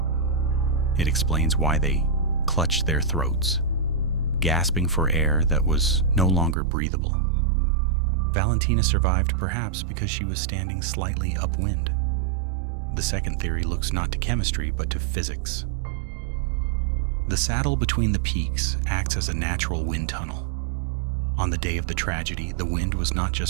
It explains why they clutched their throats, gasping for air that was no longer breathable. Valentina survived perhaps because she was standing slightly upwind. The second theory looks not to chemistry but to physics. The saddle between the peaks acts as a natural wind tunnel. On the day of the tragedy, the wind was not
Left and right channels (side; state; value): left; drops out; at 6.6 s